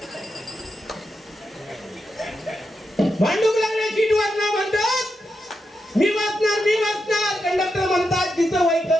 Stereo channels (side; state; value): both; normal; correlation 0.86